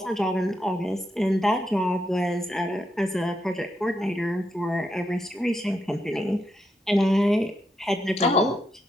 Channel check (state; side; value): normal; both; correlation 0.82